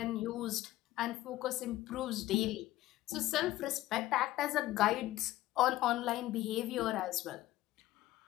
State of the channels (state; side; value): quieter; right; 15.8 dB